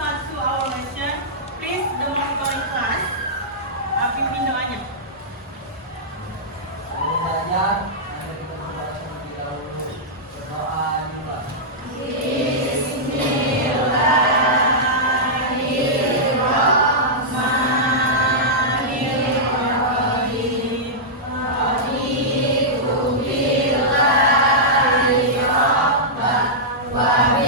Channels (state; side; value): normal; both; correlation -0.11